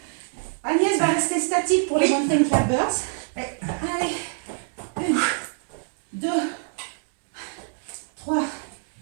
Agnès va rester statique pour les mountain climbers. Allez, 1, 2, 3,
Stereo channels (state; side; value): silent; left; digital silence